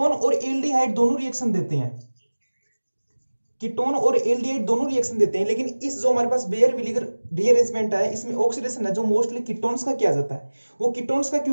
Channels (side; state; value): both; inverted; correlation -1.00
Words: और एल्डिहाइड दोनों रिएक्शन देते हैं, कीटोन और एल्डिहाइड दोनों रिएक्शन देते हैं। लेकिन इस जो हमारे पास बेयर विलीगर रीअरेंजमेंट है, इसमें ऑक्सीडेशन है जो मोस्टली कीटोन्स का किया जाता है। वो कीटोन्स का